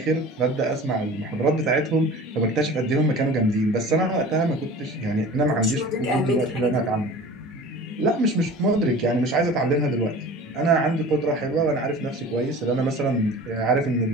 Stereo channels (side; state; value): both; normal; correlation 0.40